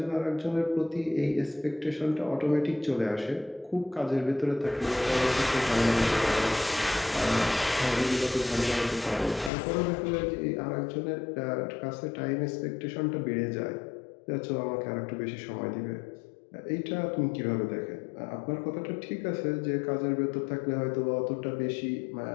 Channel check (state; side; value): drops out; right; at 9.5 s